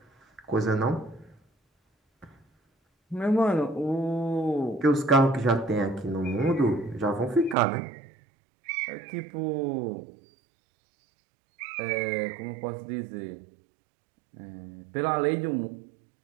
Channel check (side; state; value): left; drops out; at 7.6 s